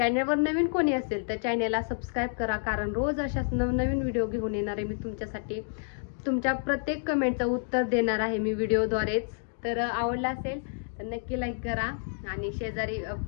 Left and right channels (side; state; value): right; silent; digital silence